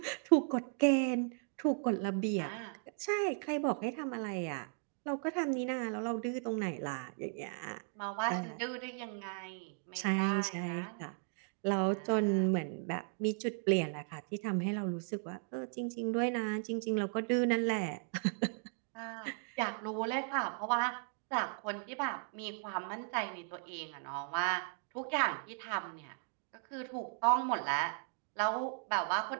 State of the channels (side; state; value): left; silent; 53 dB below the other